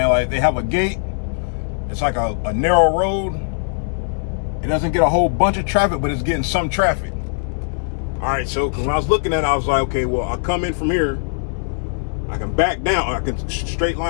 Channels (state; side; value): silent; right; digital silence